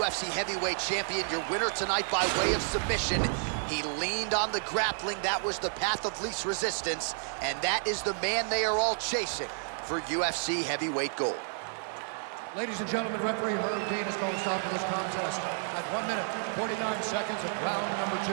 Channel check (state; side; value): silent; left; 57 dB below the other